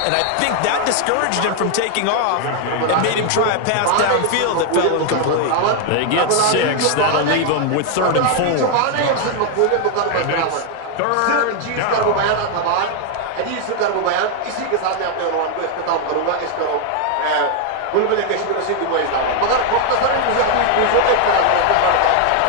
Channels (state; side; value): different; both; correlation 0.00